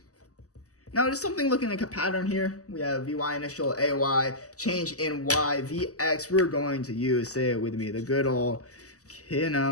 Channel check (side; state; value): right; late; 0.66 ms